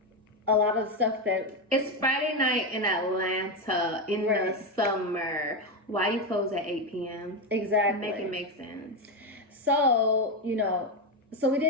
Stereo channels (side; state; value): both; normal; correlation 0.11